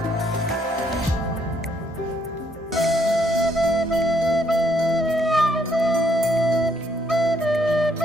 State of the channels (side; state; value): both; normal; correlation 0.70